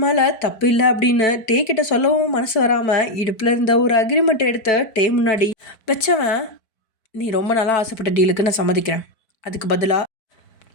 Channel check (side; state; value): right; late; 4.6 ms